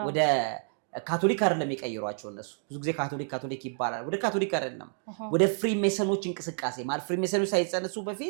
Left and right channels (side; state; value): left; silent; 56 dB below the other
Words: ካቶሊክ አይደለም የቀየሯቸው እነሱ ብዙ ጊዜ ካቶሊክ ይባላል። ወደ ካቶሊክ አይደለም ወደ ፍሪሜሰኖች እንቅስቃሴ ማለት ፍሪሜሰኖች ሳይጸነሱ